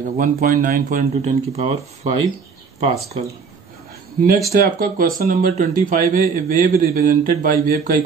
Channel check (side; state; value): left; quieter; 5.6 dB